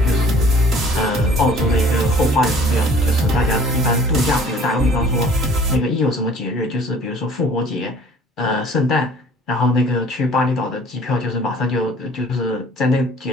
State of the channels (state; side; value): normal; both; correlation 0.52